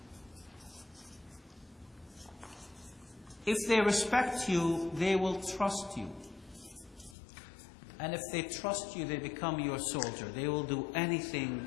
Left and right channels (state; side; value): drops out; right; at 7.2 s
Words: If they respect you, they will trust you. And if they trust you, they become your soldier. They will do anything